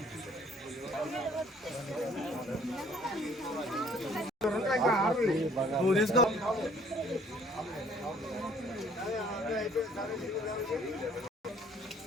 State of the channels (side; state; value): both; normal; correlation 0.58